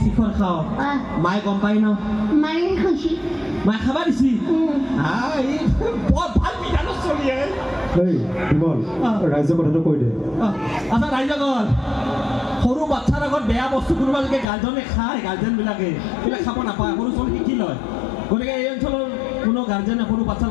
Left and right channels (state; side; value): drops out; right; at 14.5 s